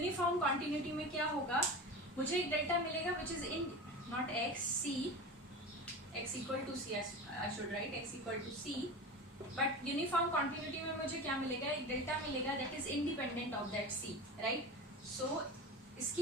continuity में क्या होगा, मुझे एक डेल्टा मिलेगा which is in not x, c, x equal to c, I should write x equal to c. But uniform continuity में मुझे क्या मिलेगा, एक डेल्टा मिलेगा that is independent of that c, right? So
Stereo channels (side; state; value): both; normal; correlation 0.29